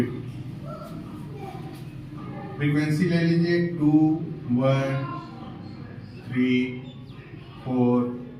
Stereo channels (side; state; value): both; identical; correlation 1.00